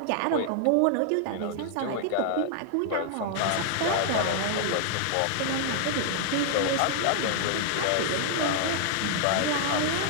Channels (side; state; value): both; different; correlation -0.01